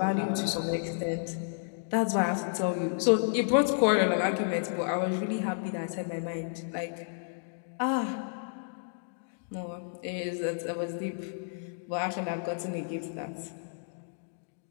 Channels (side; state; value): right; silent; digital silence